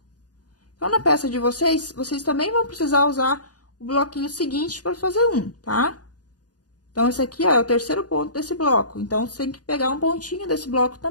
Então, na peça de vocês, vocês também vão precisar usar o bloquinho seguinte para fazer um, tá? Então, esse aqui, ó, é o terceiro ponto desse bloco. Então, você tem que pegar um pontinho desse bloco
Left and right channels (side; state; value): right; late; 0.68 ms